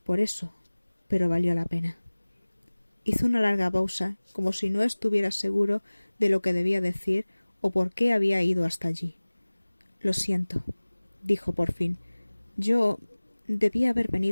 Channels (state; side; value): inverted; both; correlation -1.00